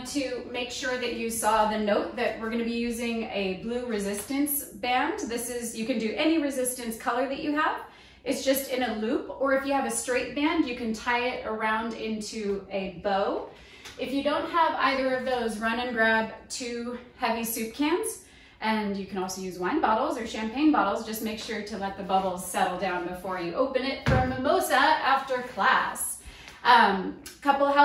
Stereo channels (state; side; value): identical; both; correlation 1.00